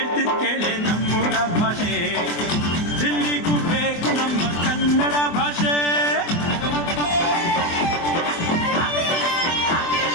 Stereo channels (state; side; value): late; right; 24 ms